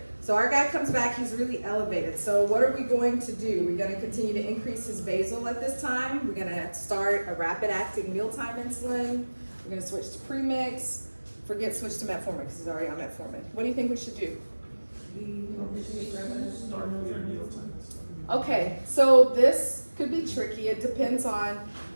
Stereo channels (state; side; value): inverted; both; correlation -1.00